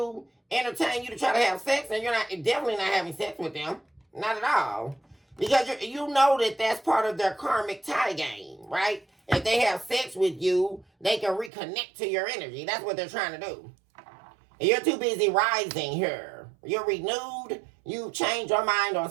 entertain you to try to have sex, and you're definitely not having sex with them. Not at all. Because you know that that's part of their karmic tie game, right? If they have sex with you, they can reconnect to your energy. That's what they're trying to do. And you're too busy rising here. You're renewed. You changed your mind on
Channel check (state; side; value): drops out; left; at 11.5 s